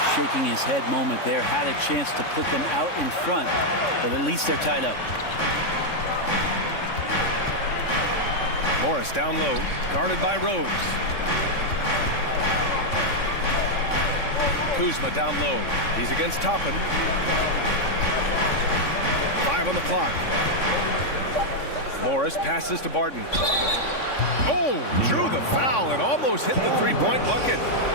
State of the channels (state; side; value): late; right; 3.6 ms